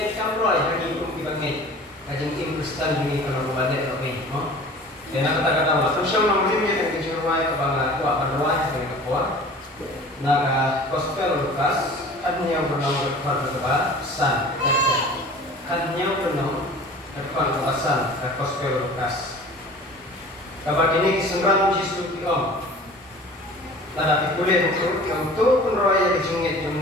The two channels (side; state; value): both; normal; correlation 0.43